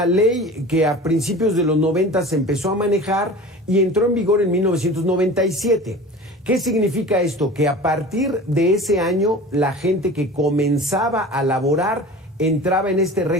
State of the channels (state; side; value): normal; both; correlation 0.37